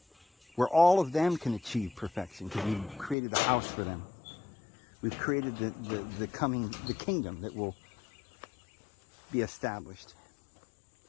where all of them can achieve perfection, because we've created a house for them. We've created the kingdom that will be established.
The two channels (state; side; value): drops out; right; at 3.2 s